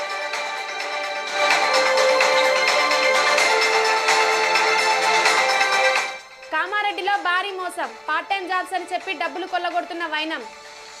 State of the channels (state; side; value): identical; both; correlation 1.00